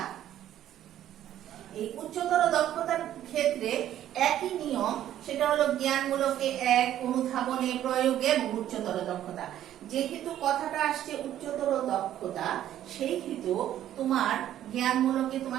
এই উচ্চতর দক্ষতার ক্ষেত্রে একই নিয়ম, সেটা হলো জ্ঞানমূলকে 1, অনুধাবনে, প্রয়োগে এবং উচ্চতর দক্ষতা। যেহেতু কথাটা আসছে উচ্চতর দক্ষতা, সেই হেতু তোমার জ্ঞানমূলকে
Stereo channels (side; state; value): left; quieter; 11.8 dB